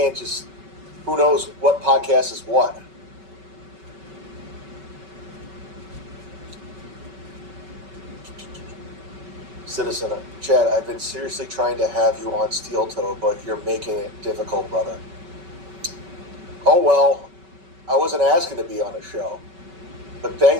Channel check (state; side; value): late; left; 5.3 ms